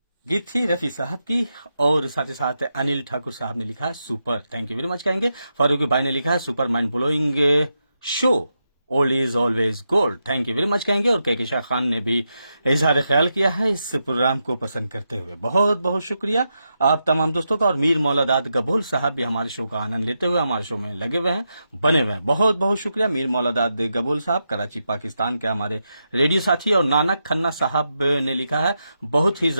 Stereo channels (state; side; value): inverted; both; correlation -0.86